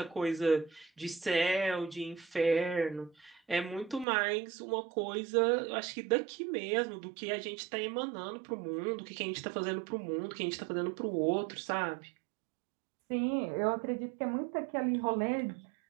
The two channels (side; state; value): left; drops out; at 4.0 s